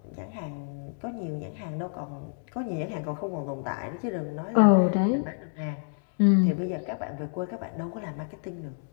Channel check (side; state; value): right; silent; digital silence